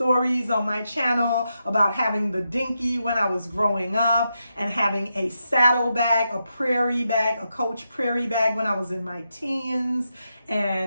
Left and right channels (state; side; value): inverted; both; correlation -0.85